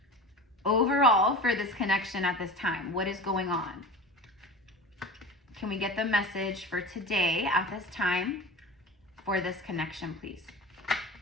overall for this connection at this time? What is going on? Can we get the message for today at this time for this connection, please?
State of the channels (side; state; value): both; normal; correlation 0.33